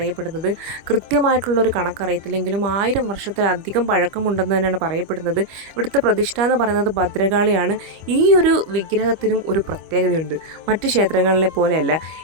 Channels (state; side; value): late; left; 25 ms